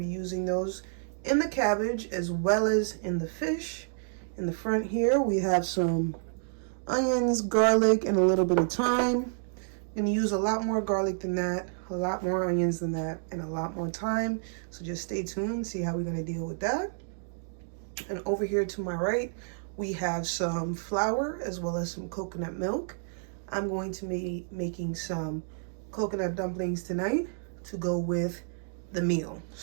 using those in the cabbage as well as in the fish. In the front here, we have some onions, garlic, and a little bit of thyme. I'm going to use a lot more garlic than that, a lot more onions than that, and a lot more thyme. So just stay tuned, see how we're going to deal with that. And over here to my right, we have some flour as well as some coconut milk. I'm going to be making some coconut dumplings tonight to go with the meal.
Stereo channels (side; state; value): left; silent; digital silence